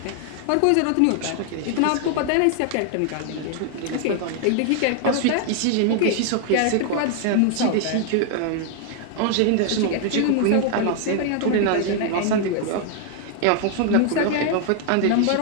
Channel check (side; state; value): both; different; correlation 0.00